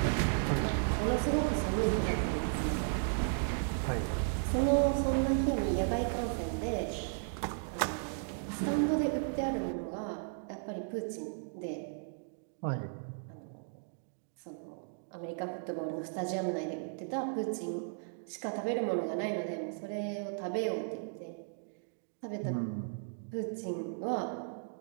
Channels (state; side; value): silent; left; digital silence